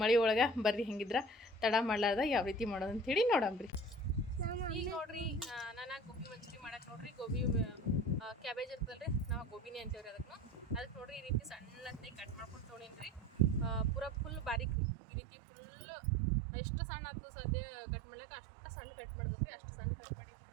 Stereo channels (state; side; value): drops out; left; at 14.8 s